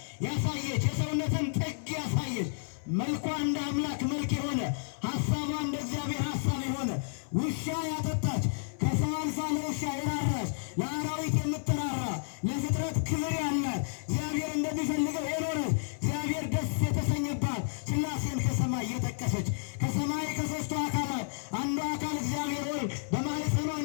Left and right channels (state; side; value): silent; right; 57 dB below the other